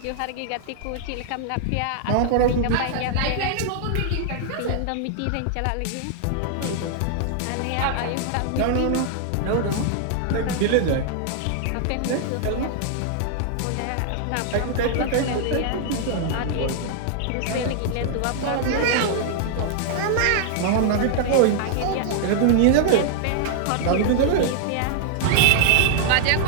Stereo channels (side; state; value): both; different; correlation -0.01